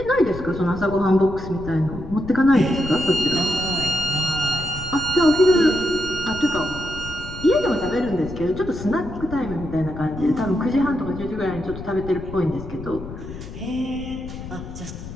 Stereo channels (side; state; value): left; noise; rumble, 11 dB below the sound